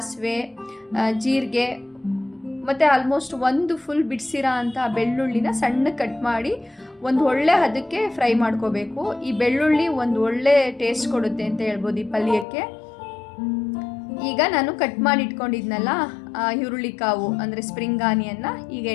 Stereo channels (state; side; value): drops out; right; at 12.5 s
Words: ಜೀರಿಗೆ ಮತ್ತು ಆಲ್ಮೋಸ್ಟ್ ಒಂದು ಫುಲ್ ಬಿಡಿಸಿರೋ ಅಂಥ ಬೆಳ್ಳುಳ್ಳಿನ ಸಣ್ಣ ಕಟ್ ಮಾಡಿ ಒಂದು ಒಳ್ಳೆ ಹದಕ್ಕೆ ಫ್ರೈ ಮಾಡ್ಕೋಬೇಕು. ಈ ಬೆಳ್ಳುಳ್ಳಿ ಒಂದು ಒಳ್ಳೆ ಟೇಸ್ಟ್ ಕೊಡುತ್ತೆ ಅಂತ ಹೇಳ್ಬೋದು ಈ ಪಲ್ಯಕ್ಕೆ. ಈಗ ನಾನು ಕಟ್ ಮಾಡಿ ಇಟ್ಕೊಂಡಿದ್ನಲ್ಲ ಈರುಳ್ಳಿ ಕಾವು ಅಂದರೆ ಸ್ಪ್ರಿಂಗ್ ಆನಿಯನ್ನ ಈಗ